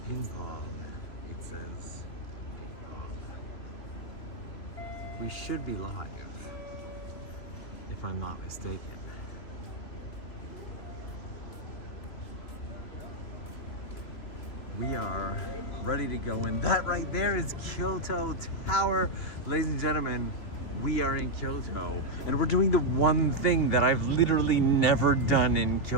Ping pong. It says ping pong. We should be live, if I'm not mistaken. We are ready to go in. That right there is Kyoto Tower. Ladies and gentlemen, we are in Kyoto. And we're doing the one thing that I've literally never done in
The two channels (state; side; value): late; right; 3.3 ms